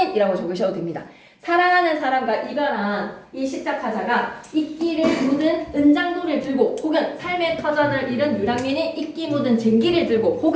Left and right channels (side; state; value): both; identical; correlation 1.00